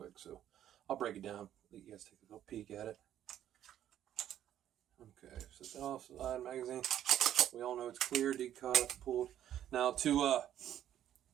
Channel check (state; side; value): quieter; left; 11.2 dB